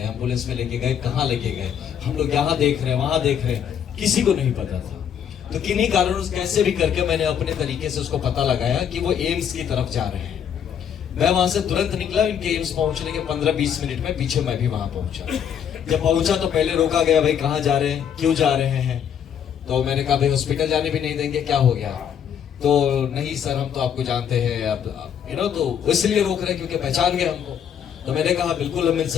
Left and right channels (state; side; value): quieter; right; 8.5 dB